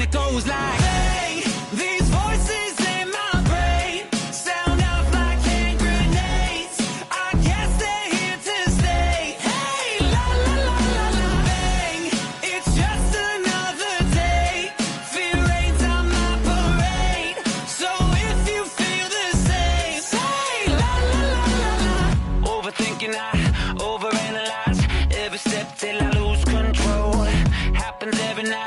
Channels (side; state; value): both; identical; correlation 1.00